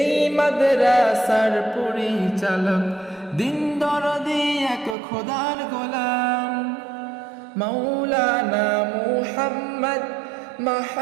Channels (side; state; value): left; drops out; at 5.0 s